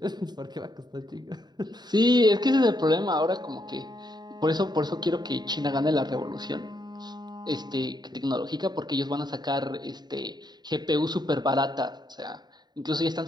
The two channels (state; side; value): late; left; 0.20 ms